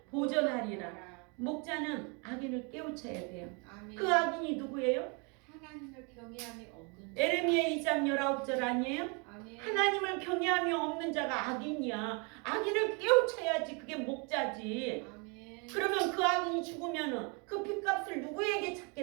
보존하리라. 목자는 악인을 깨우쳐야 돼요. 아멘. 그 악인이 누구예요? 하나님을 경외함이 없는 자. 에레미야 2장 19절 아니에요? 아멘. 하나님을 경외함이 없는 자가 악인이야. 악인을 깨우쳐야지. 그게 목자지. 아멘. 그러면 그 악인이 죽으면은 그 핏값을 누구에게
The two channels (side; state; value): left; quieter; 33.0 dB